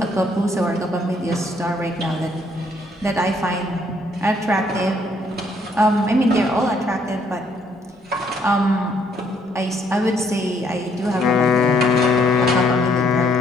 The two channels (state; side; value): normal; both; correlation 0.68